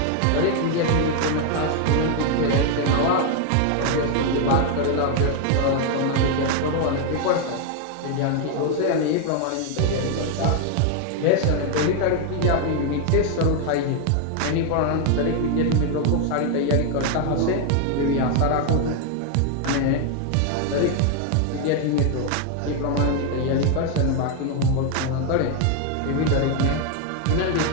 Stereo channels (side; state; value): both; different; correlation 0.00